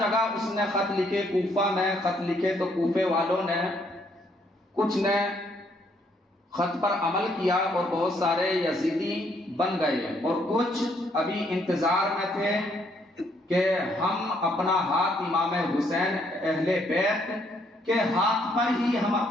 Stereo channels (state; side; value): normal; both; correlation 0.70